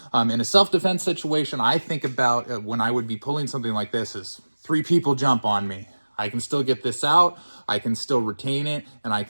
In a self-defense situation, I think about when I would be pulling something like this is 3 people jump on me. I can still get this out, I can still retain it, and I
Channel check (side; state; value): both; inverted; correlation -1.00